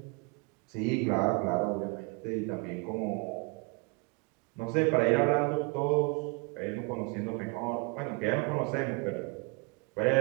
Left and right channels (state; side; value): quieter; left; 30.8 dB